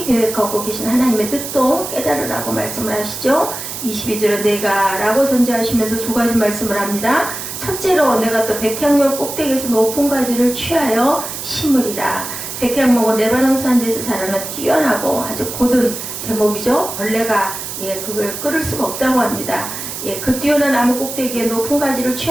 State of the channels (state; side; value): noise; right; hiss, 7 dB below the sound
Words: 계획하고 계신 하나님의 뜻도 깨달으라고 말씀을 하시죠. 22절에 내가 라고 선지하시면서 두 가지 말씀을 합니다. 첫째로 내가 또 백향목 꼭대기에서 높은 가지를 취하여 심으리라. 백향목은 레바논 산지에서 자라는 뛰어나고 아주 고든 제목이죠. 벌레가 그걸 끌을 수가 없다고 합니다. 그 뛰어난 나무 꼭대기에 높은 가지를